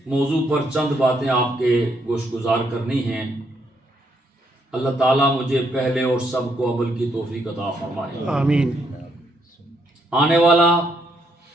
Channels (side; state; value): both; normal; correlation 0.74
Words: موضوع پر چند باتیں آپ کے گوش گزار کرنی ہیں۔ اللہ تعالیٰ مجھے پہلے اور سب کو عمل کی توفیق عطا فرمائے۔ آمین۔ آنے والا